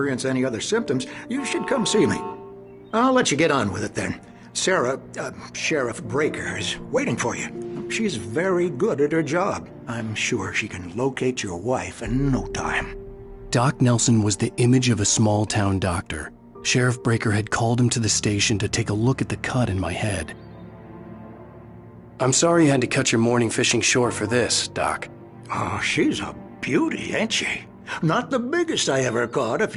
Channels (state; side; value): identical; both; correlation 1.00